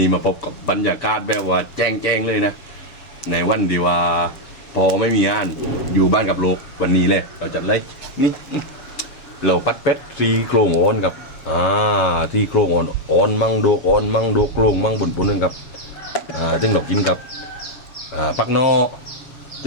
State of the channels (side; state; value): right; late; 7.0 ms